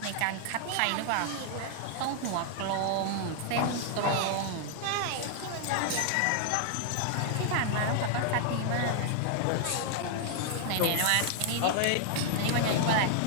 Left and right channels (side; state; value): both; different; correlation 0.00